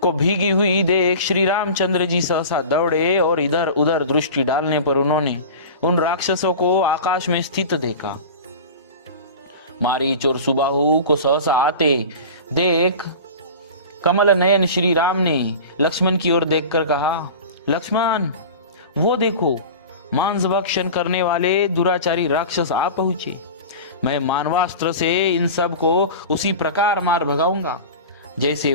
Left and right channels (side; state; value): both; inverted; correlation -0.34